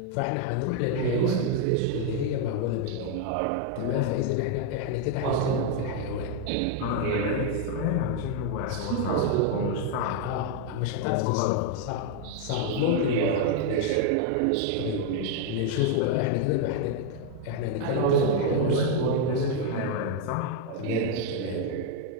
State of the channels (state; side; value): different; both; correlation 0.00